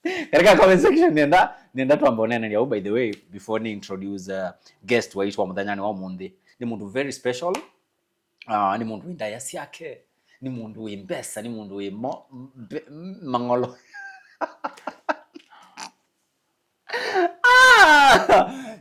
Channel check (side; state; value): both; identical; correlation 1.00